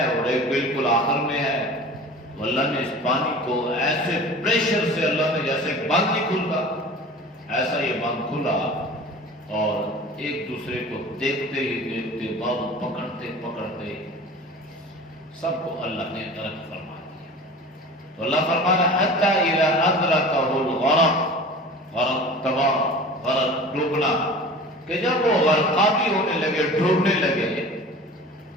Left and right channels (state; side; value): normal; both; correlation 0.39